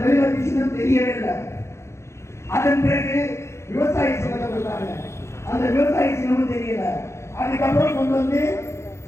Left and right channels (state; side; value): late; right; 0.13 ms